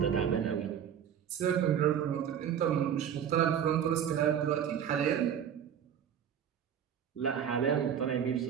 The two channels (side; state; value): left; quieter; 8.8 dB